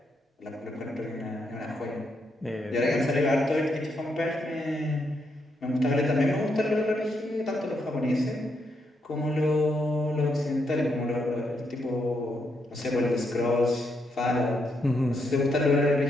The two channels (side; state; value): both; normal; correlation 0.79